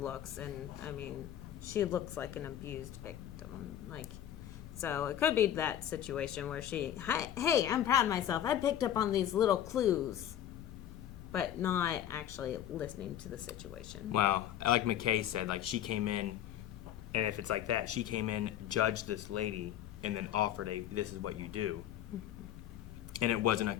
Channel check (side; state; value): right; quieter; 10.9 dB